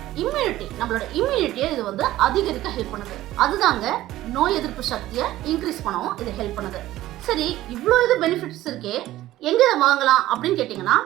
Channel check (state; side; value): quieter; left; 15.2 dB